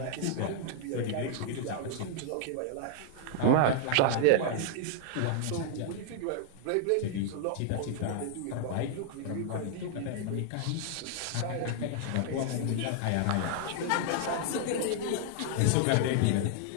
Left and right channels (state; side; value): different; both; correlation 0.00